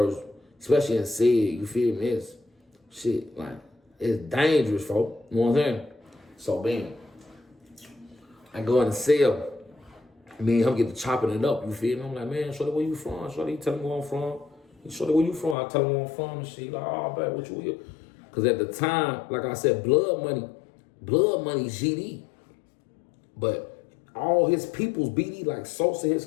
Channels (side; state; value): right; drops out; at 15.6 s